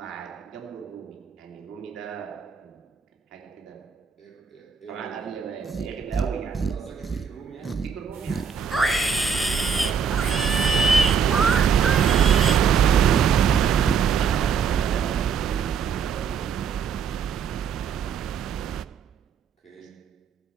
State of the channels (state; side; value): quieter; left; 6.6 dB